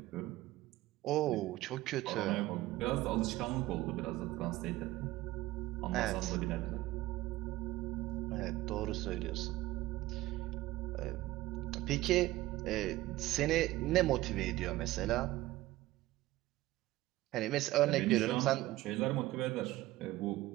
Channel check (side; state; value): left; quieter; 17.2 dB